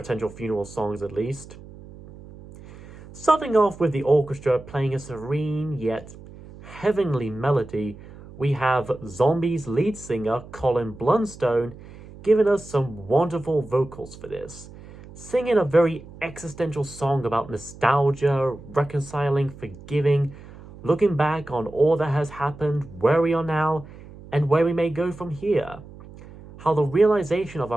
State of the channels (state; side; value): noise; right; hum, 18 dB below the sound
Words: funeral songs at least. Starting off with the orchestra playing a serene yet heavenly melody, we have Zombies lead singer Colin Blunstone giving us some wonderful vocals for this, singing a very existential song about nostalgia, reconciling, forgiving, looking back on all that has happened, where we are now, and where we may go from here. How the realization of